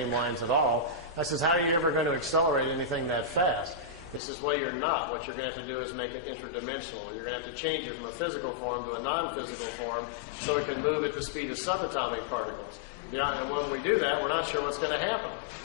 lines at all. I says, how are you ever going to accelerate anything that fast? He says, well, you're not. What you're going to have to do is make it interdimensional. You're going to have to change it from a physical form to a non-physical form so it can move at the speed of subatomic particles. And when we do that, we're not sure what's going to happen.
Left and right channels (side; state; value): right; drops out; at 4.2 s